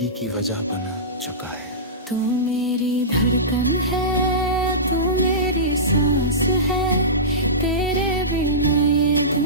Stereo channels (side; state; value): both; normal; correlation -0.20